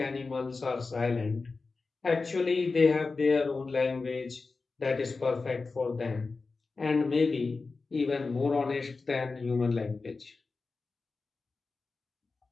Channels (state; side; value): quieter; right; 4.1 dB